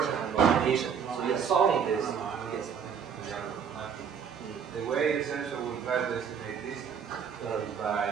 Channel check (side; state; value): left; quieter; 7.2 dB